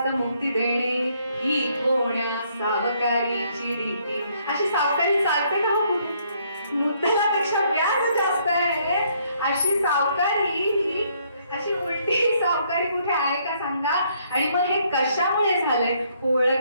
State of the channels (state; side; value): inverted; both; correlation -0.68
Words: मुक्ती देणे ही कोण्या सावकारीची रीती. अशी सावकारी चालते का हो कुठे? मुद्दलापेक्षा व्याज जास्त आहे अशी सावकारी ही, अशी उलटी सावकारी कुठे आहे का सांगा. आणि मग हे कशामुळे झालंय?